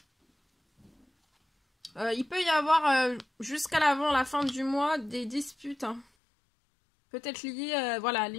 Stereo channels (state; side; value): drops out; right; at 6.1 s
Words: Il peut y avoir jusqu'à l'avant la fin du mois des disputes. Hein. Peut-être liées voilà, à